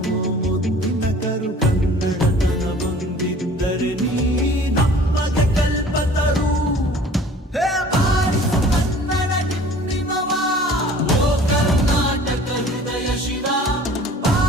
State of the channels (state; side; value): normal; both; correlation 0.48